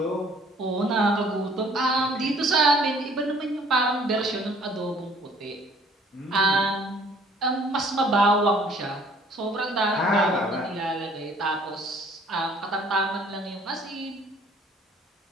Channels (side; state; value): both; normal; correlation 0.57